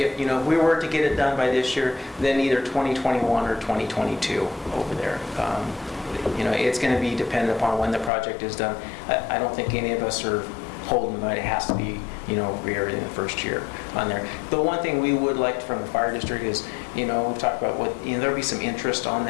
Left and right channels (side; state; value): right; drops out; at 8.1 s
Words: we were to get it done by this year, then either 2021 or 2022 over there. It's going to be dependent upon when the project is done. I don't think any of us are holding, but it has to be, everything the first year on there. The one thing we would like from the fire district is, we've talked about there'll be some interest on